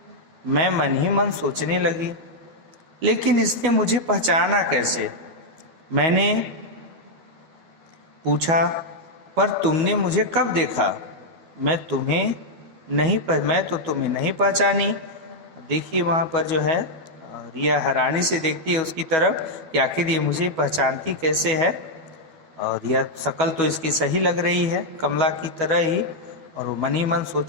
मैं मन ही मन सोचने लगी, लेकिन इसने मुझे पहचाना कैसे? मैंने पूछा, पर तुमने मुझे कब देखा? मैं तो तुम्हें नहीं पहचानी। देखिए वहाँ पर जो है रिया हैरानी से देखती है उसकी तरफ कि आखिर ये मुझे पहचानती कैसे है। और रिया शक्ल तो इसकी सही लग रही है, कमला की तरह ही। और वो मन ही मन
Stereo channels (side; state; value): left; late; 12 ms